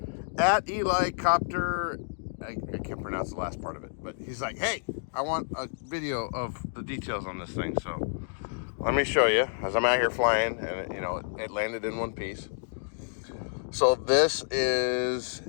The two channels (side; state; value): right; silent; digital silence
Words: at Eli Copter. I can't pronounce the last part of it, but he's like, hey, I want a video of the details on this thing. So let me show you as I'm out here flying, and it landed in one piece. So this is